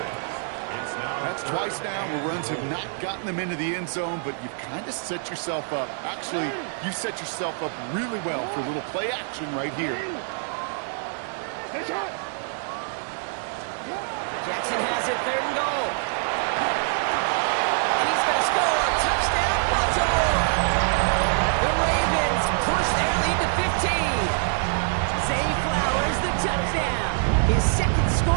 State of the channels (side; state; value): left; silent; digital silence